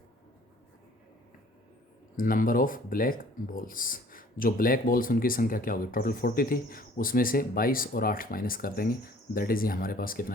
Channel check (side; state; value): both; normal; correlation 0.53